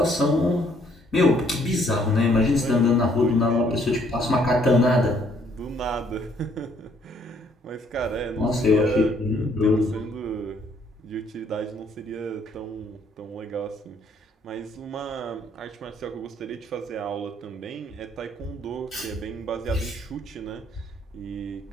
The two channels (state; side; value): normal; both; correlation 0.66